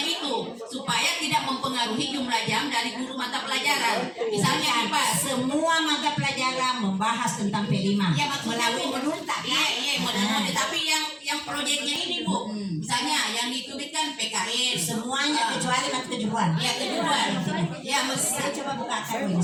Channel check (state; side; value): identical; both; correlation 1.00